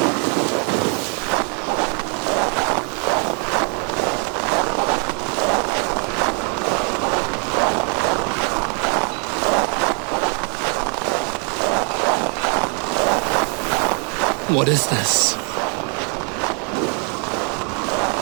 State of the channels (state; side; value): quieter; left; 38.8 dB